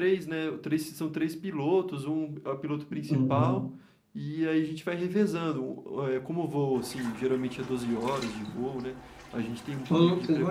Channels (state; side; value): identical; both; correlation 1.00